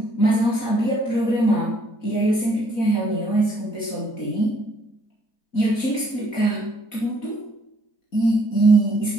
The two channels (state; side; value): late; right; 4.0 ms